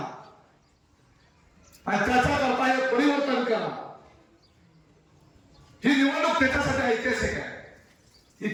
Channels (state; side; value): identical; both; correlation 1.00